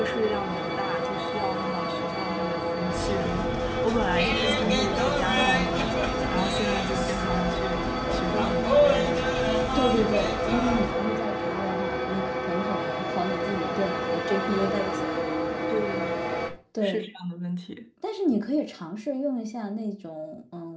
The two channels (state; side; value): identical; both; correlation 1.00